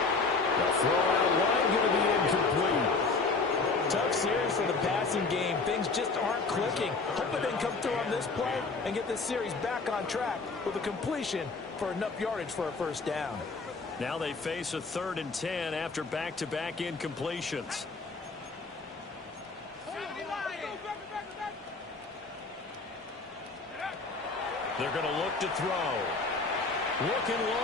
The throw out wide going to be incomplete. Tough series for the passing game. Things just aren't clicking. Hoping they can come through on this play and get this series back on track with a completion for enough yardage for a first down. Now they face a 3rd and 10 after back-to-back incompletions. They're going to look to throw. Looking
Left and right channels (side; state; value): right; quieter; 4.0 dB